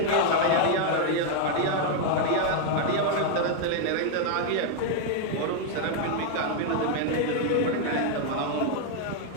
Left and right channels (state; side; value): different; both; correlation 0.00